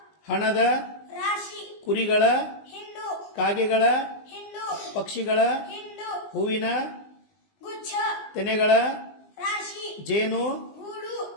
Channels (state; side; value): late; right; 20 ms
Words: ಹಣದ, ರಾಶಿ, ಕುರಿಗಳ, ಹಿಂಡು, ಕಾಗೆಗಳ, ಹಿಂಡು, ಪಕ್ಷಿಗಳ, ಹಿಂಡು, ಹೂವಿನ, ಗುಚ್ಛ, ತೆನೆಗಳ, ರಾಶಿ, ಜೇನು, ಗೂಡು,